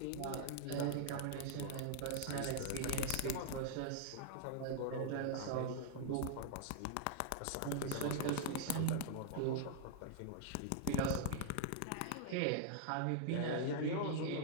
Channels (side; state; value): both; different; correlation -0.01